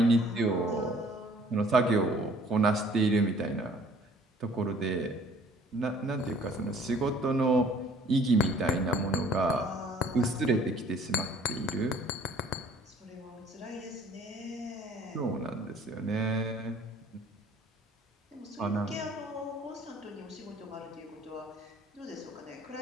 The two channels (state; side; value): normal; both; correlation 0.55